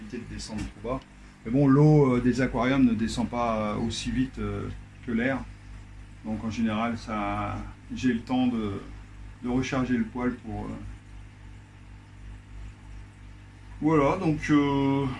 de descendre trop bas. Mais bon, l'eau des aquariums ne descend pas aussi vite que l'air. Donc en général, j'ai le temps de recharger le poêle pour... Voilà, donc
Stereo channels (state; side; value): identical; both; correlation 1.00